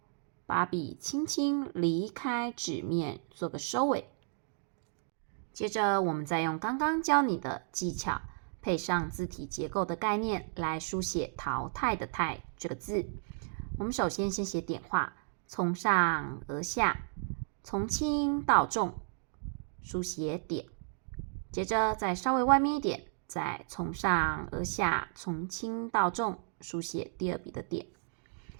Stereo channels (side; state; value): left; silent; digital silence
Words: 把笔轻轻离开纸面，做个收尾。接着我们再用刚刚教你的技巧，配上字体结构的概念来书写淘汰的汰这个字。我们首先写点画，从上而下，从轻到重，书写点。接着再稍微外面一点，再从上而下，从轻到重，书写第2笔的点。